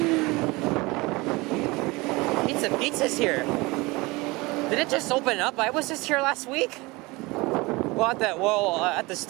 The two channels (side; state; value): left; quieter; 23.4 dB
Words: Pizza's here. Did it just open up? I was just here last week. Well, at the